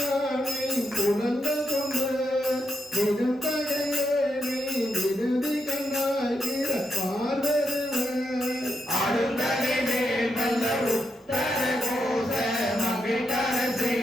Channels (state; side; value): normal; both; correlation 0.83